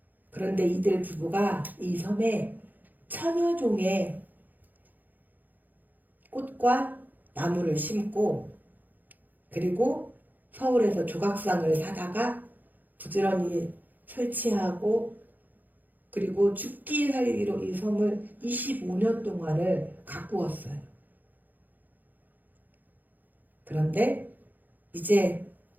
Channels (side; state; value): left; late; 0.085 ms